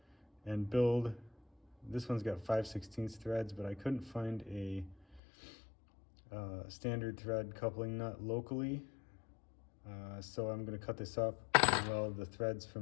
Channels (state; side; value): drops out; right; at 5.2 s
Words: and build. This one's got 5/16 threads, but I couldn't find a standard thread coupling nut locally. So I'm going to cut this up and weld the threads